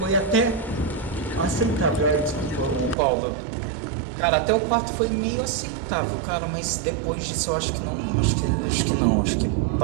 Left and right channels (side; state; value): left; drops out; at 3.0 s